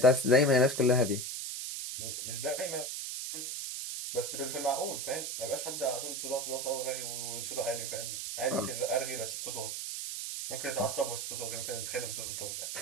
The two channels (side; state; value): right; noise; hiss, 4 dB below the sound